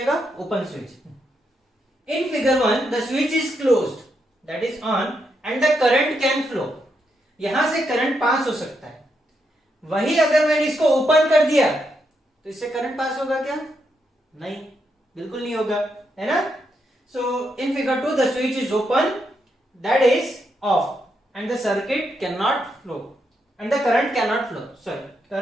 open switch. In figure 1 the switch is closed that is on and the current can flow. यहां से करंट पास हो सकता है। वही अगर मैंने इसको ओपन कर दिया तो इससे करंट पास होगा क्या, नहीं, बिल्कुल नहीं होगा, है ना। So in figure 2 the switch is open that is off and the circuit can not flow and the current can not flow, sorry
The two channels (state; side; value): normal; both; correlation 0.81